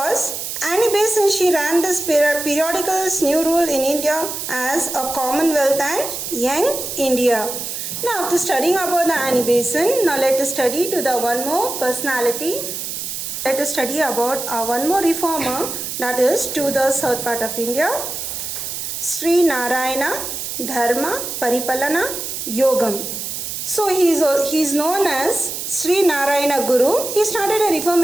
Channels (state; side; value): noise; right; hiss, 5 dB below the sound